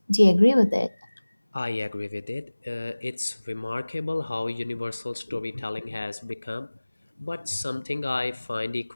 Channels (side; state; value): both; inverted; correlation -1.00